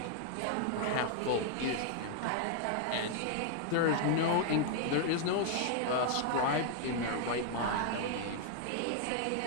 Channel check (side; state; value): both; different; correlation 0.00